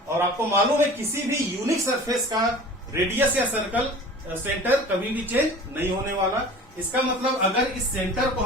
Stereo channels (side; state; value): both; normal; correlation 0.41